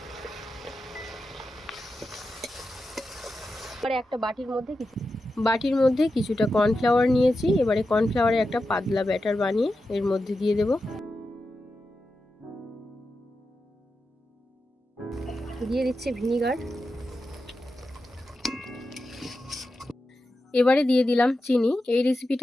এবারে একটা বাটির মধ্যে কিছুটা কর্নফ্লাওয়ার নিয়েছি। এবারে কর্নফ্লাওয়ারে একটা পাতলা ব্যাটার বানিয়ে এর মধ্যে দিয়ে দেব। দিয়ে দিচ্ছি ভিনিগার, এবারে দিয়ে দিলাম চিনি। এই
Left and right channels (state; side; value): normal; both; correlation 0.90